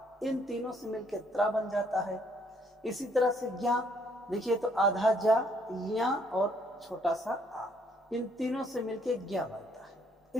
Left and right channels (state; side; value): normal; both; correlation 0.67